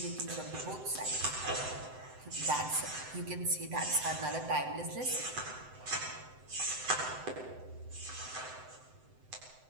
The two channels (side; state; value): left; late; 7.8 ms